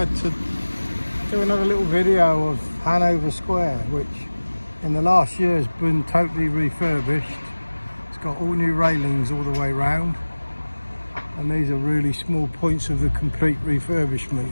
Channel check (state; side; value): inverted; both; correlation -1.00